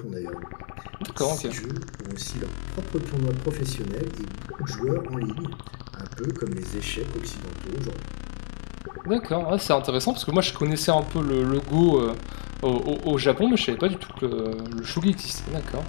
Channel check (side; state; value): right; silent; digital silence